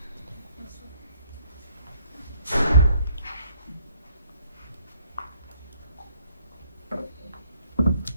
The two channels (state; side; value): inverted; both; correlation -0.65